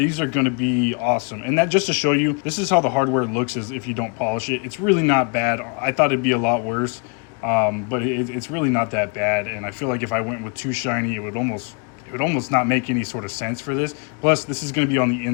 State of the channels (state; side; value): quieter; right; 35.9 dB